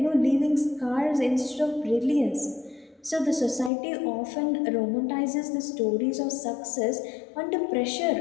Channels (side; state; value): right; drops out; at 3.7 s